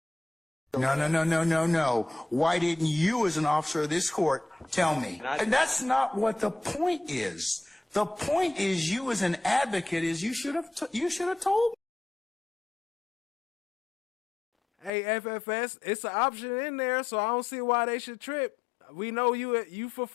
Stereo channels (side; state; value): right; drops out; at 14.9 s